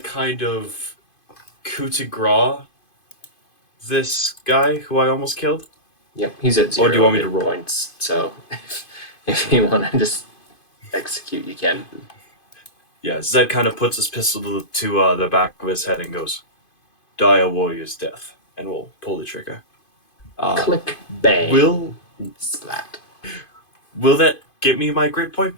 of coup de grace this guy who I almost killed? Yep, he's at 0 Or do you want me to hit roll? points, so if you want to just execute, you can. Yeah, Zed kind of puts his pistol to the back of his head and goes, "Die a warrior's death," and we'll pull the trigger. Click, bang, splat. Will that get me my grit point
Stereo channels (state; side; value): late; right; 2.5 ms